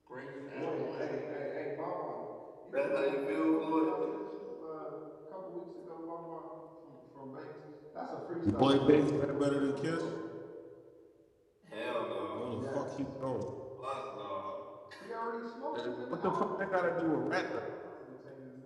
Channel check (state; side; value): identical; both; correlation 1.00